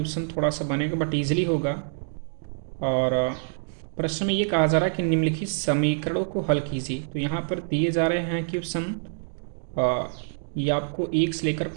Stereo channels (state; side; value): silent; left; digital silence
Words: थोड़ा सा बनेगा बट ईजिली होगा। और प्रश्न में ये कहा जा रहा है कि निम्नलिखित समीकरणों को हल कीजिए। तो यहाँ पर दिए जा रहे हैं क्वेश्चन, ये आपको 1 से लेकर